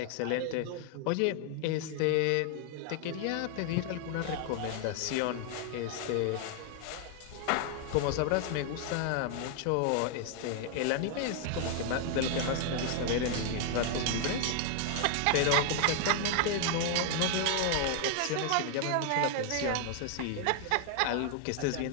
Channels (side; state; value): both; different; correlation 0.00